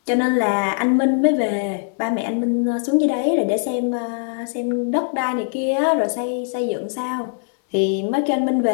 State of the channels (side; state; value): right; silent; 65 dB below the other